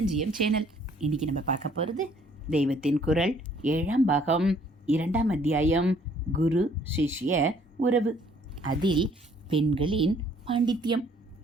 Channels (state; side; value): normal; both; correlation 0.61